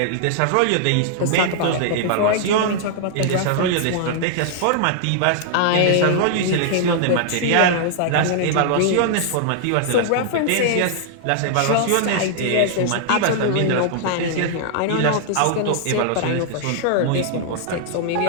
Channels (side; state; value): both; different; correlation -0.01